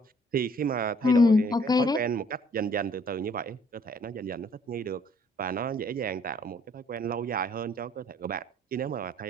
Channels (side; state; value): both; normal; correlation 0.61